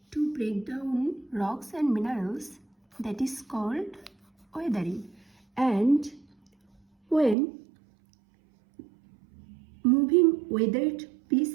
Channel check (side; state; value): left; drops out; at 7.4 s